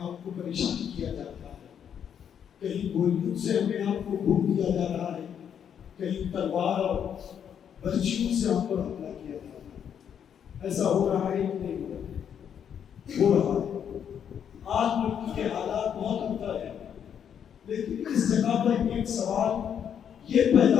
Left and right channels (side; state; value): right; quieter; 8.4 dB